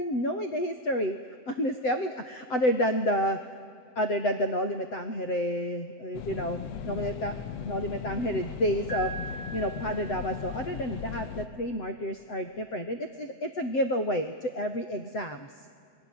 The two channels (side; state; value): right; late; 7.9 ms